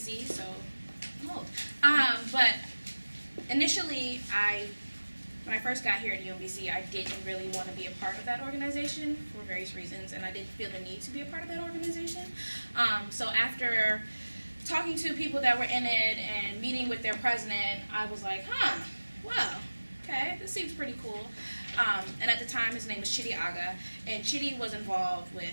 so I'm old. But initially, when I first got here at UMBC, I didn't really want to be a part of that organization for various reasons, and I didn't feel the need to be a part of that organization. So after talking to people that were in it and meeting with their president, I was like, well, okay, this seems pretty cool. And at the time, his name was Chidi Aga, and Chidi was involved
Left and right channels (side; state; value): both; inverted; correlation -1.00